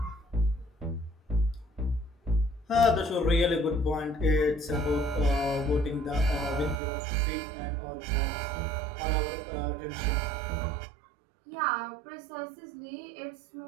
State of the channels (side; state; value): left; drops out; at 6.8 s